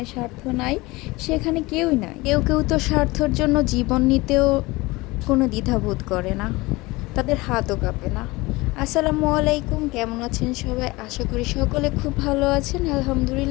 স্বার্থ নাই সেখানে কেউই নাই। কেউ কেউ তো স্বার্থর জন্য জীবন নিতেও কোনো দ্বিধাবোধ করে না, তাদের হাতও কাঁপে না। আসসালামু আলাইকুম, কেমন আছেন সবাই? আশা করি সকলে খুব ভালো আছেন।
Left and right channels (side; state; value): right; quieter; 22.0 dB